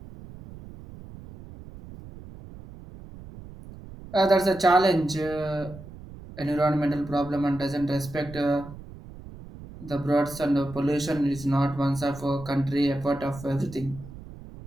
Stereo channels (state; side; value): noise; right; rumble, 16 dB below the sound